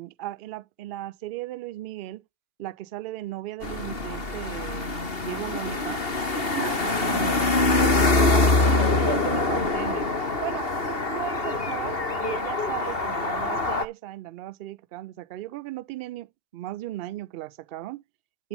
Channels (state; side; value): late; right; 2.8 ms